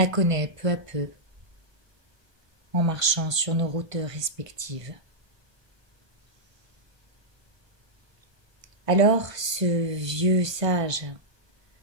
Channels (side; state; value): left; late; 1.5 ms